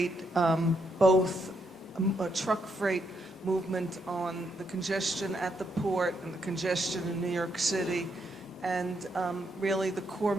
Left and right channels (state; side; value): normal; both; correlation 0.78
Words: both truck freight movement on the congestion at the port and the congestion in New York City, and really the core